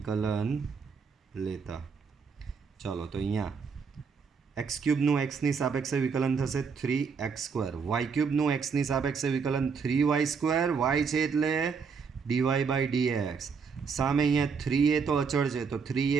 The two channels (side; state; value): left; quieter; 5.7 dB